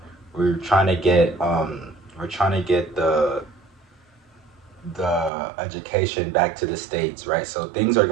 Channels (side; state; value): left; drops out; at 5.3 s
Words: we're trying to get the education back to the states, right? So things are